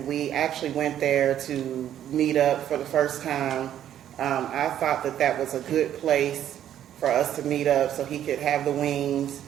we actually went there to meet up for the first time. I thought that was a good place for us to meet up so he could have the wings,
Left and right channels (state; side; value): quieter; left; 10.8 dB